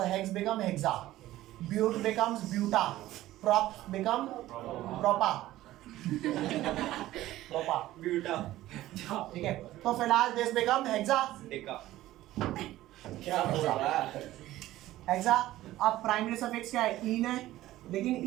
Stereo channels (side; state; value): left; quieter; 15.4 dB